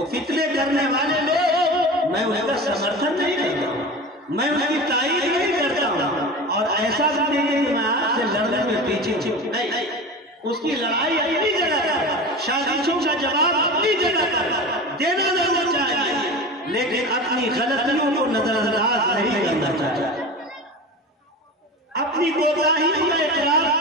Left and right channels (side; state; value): both; normal; correlation 0.31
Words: فتنے کرنے والے لوگ، میں ان کا سمرتھن نہیں کرتا ہوں، میں ان کی تائید نہیں کرتا ہوں، اور ایسا بھی نہیں کہ میں آپ سے لڑنے میں پیچھے نہیں، اس کی لڑائی اپنی جگہ پر، سازشوں کا جواب اپنی جگہ پر دینا ضرور چاہیے، لیکن اپنی غلطیوں کو نظر انداز نہیں کرنا چاہیے، اپنی کوتاہیوں کا اقرار